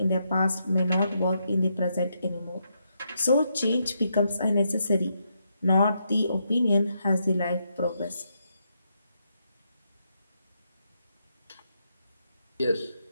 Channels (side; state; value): both; inverted; correlation -0.80